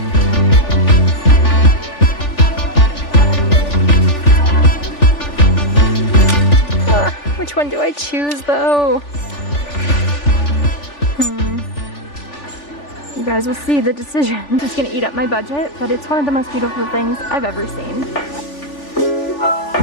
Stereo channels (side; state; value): right; late; 3.4 ms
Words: Which one do I choose though? You guys will see the decision. It's gonna eat up my budget, but it's one of the most beautiful things I've ever seen.